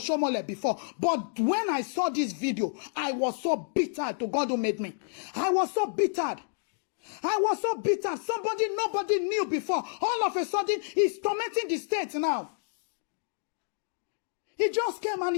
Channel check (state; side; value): silent; right; digital silence